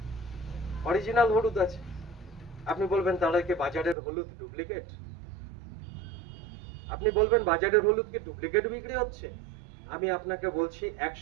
অরিজিনাল হলুদ আছে। আপনি বলবেন তাহলে কি বাজারের হলুদ ডুপ্লিকেট? আপনি বলবেন বাজারের হলুদ কি ডুপ্লিকেট বিক্রি হচ্ছে? আমি আপনাকে বলছি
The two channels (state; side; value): drops out; left; at 4.0 s